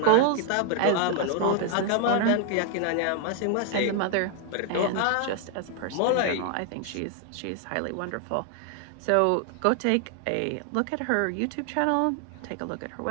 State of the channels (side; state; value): both; different; correlation 0.00